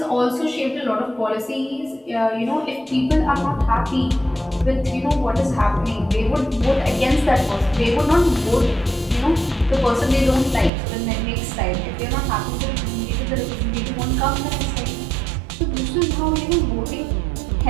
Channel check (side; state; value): left; drops out; at 10.7 s